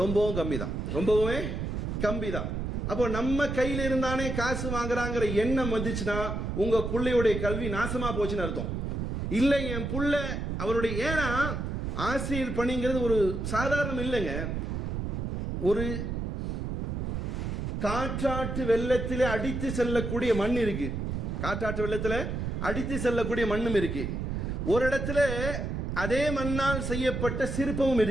கம்மி தான், ரொம்பவே கம்மி தான். அப்போ நம்ம கையில் இருந்தானே காசு வாங்குறாங்கிற எண்ணம் வந்துச்சுன்னா உங்க பிள்ளையுடைய கல்வி நாசமா போச்சுன்னு அர்த்தம். இல்லை என் புள்ள அவருடைய, ஏன்னா ஆசிரியர் பணிங்கிறது ஒரு சாதாரணம் இல்லைங்க. ஒரு காற்றாற்று வெள்ளத்திலே அடித்து செல்லக்கூடிய மண் இருக்கு, காற்றாற்று வெள்ளத்தில் அடித்து செல்லக்கூடிய மண்ணும் இருக்கு. ஒரு இடத்துல அதே மண்ணால் செய்யப்பட்ட சிற்பமும்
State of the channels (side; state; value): right; noise; rumble, 3 dB below the sound